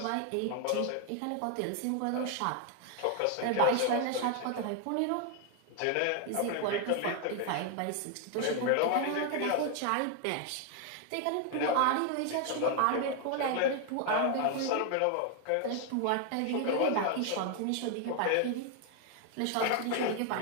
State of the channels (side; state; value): both; different; correlation 0.00